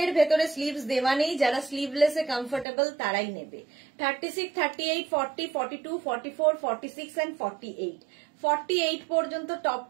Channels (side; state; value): left; drops out; at 2.7 s